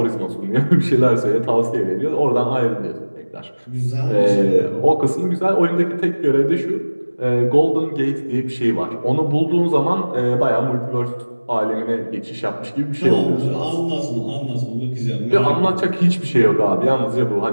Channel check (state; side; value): inverted; both; correlation -1.00